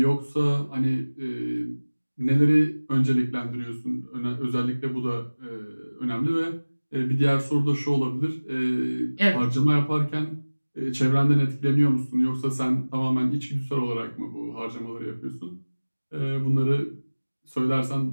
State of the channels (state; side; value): inverted; both; correlation -1.00